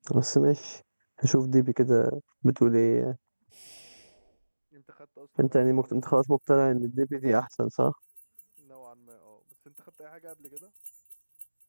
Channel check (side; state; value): both; inverted; correlation -1.00